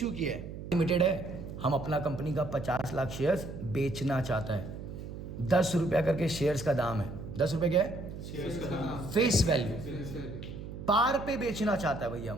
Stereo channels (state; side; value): noise; right; hum, 10 dB below the sound